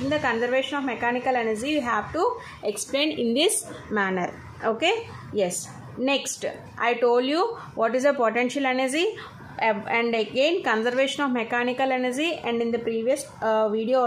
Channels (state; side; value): identical; both; correlation 1.00